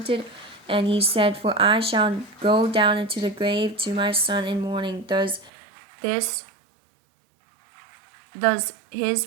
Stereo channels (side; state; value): left; drops out; at 5.5 s